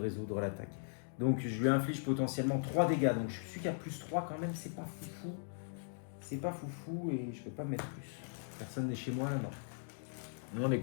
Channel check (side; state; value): right; silent; digital silence